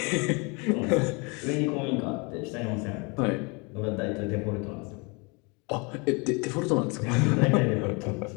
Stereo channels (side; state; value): right; quieter; 30.0 dB